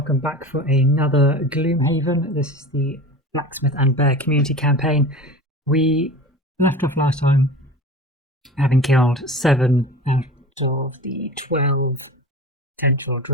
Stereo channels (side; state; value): both; normal; correlation 0.35